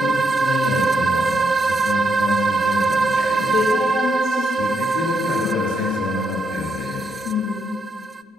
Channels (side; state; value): both; normal; correlation 0.77